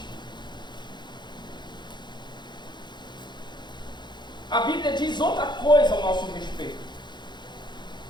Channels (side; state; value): right; late; 0.21 ms